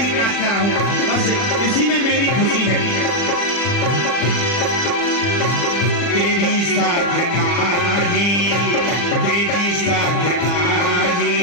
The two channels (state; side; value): late; right; 40 ms